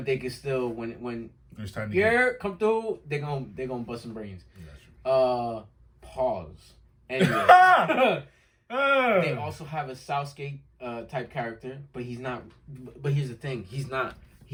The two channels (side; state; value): both; identical; correlation 1.00